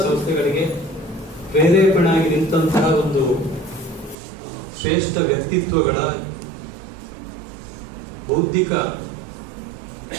ಸಂಸ್ಥೆಗಳಿಗೆ ಪ್ರೇರೇಪಣೆಯಾಗಿ ನಿಂತಹ ಒಂದು ಶ್ರೇಷ್ಠ ವ್ಯಕ್ತಿತ್ವಗಳ ಬೌದ್ಧಿಕ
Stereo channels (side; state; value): left; drops out; at 4.2 s